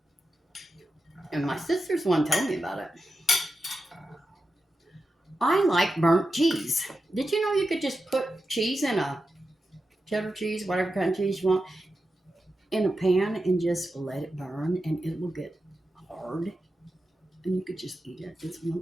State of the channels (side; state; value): both; normal; correlation 0.90